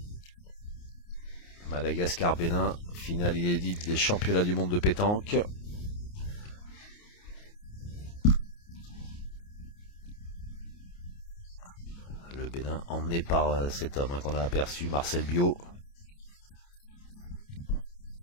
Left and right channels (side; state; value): right; late; 29 ms